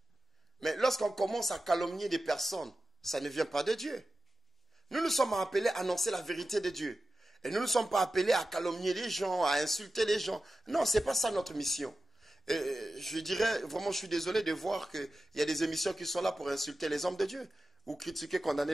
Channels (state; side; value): normal; both; correlation 0.93